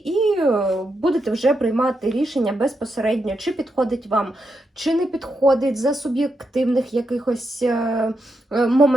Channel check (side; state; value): both; normal; correlation 0.84